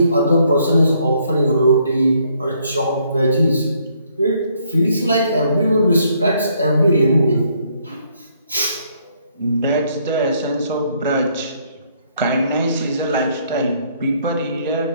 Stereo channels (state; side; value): inverted; both; correlation -0.69